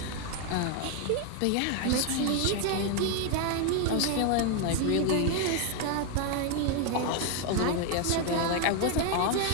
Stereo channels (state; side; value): different; both; correlation 0.01